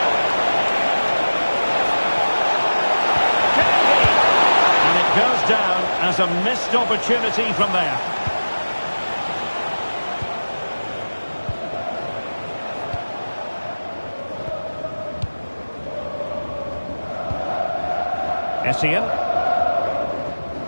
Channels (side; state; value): both; inverted; correlation -1.00